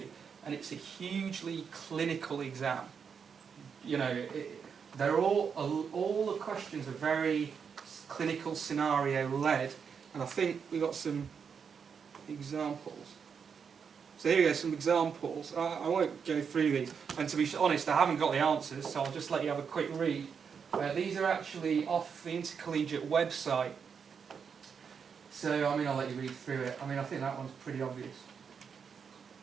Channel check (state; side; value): quieter; left; 6.5 dB